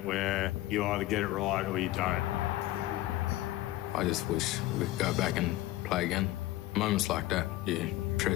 where you either get it right or you don't. I just wish we could go back and play again. Moments like that, you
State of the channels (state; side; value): quieter; right; 16.3 dB